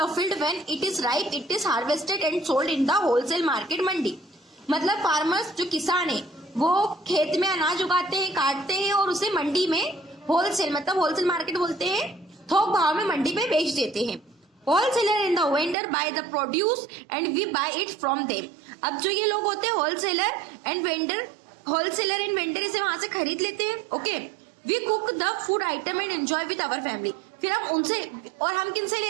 field when it is ripe, it is harvested and sold in the wholesale market mandi, मतलब फार्मर्स जो किसान है वो खेत में अनाज उगाते हैं, काटते हैं और उसे मंडी में होलसेल, मतलब होलसेल मार्केट बोलते हैं, थोक भाव में मंडी में बेच देते हैं। Wholesaler and the vendor buy the produce and we buy it from them, अब जो ये लोग होते हैं होलसेलर एंड वेंडर इसे वहां से खरीद लेते हैं, okay. We cook the food item and enjoy with our family, फिर हम उनसे, और हम किनसे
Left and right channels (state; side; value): drops out; left; at 15.8 s